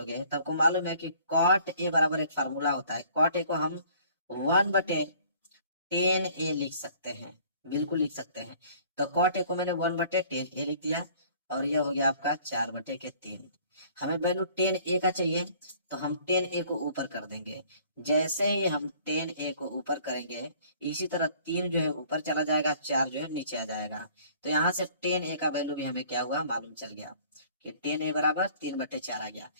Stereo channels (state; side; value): inverted; both; correlation -0.55